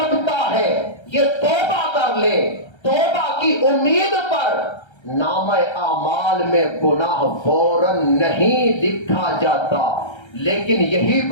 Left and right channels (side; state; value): right; late; 1.3 ms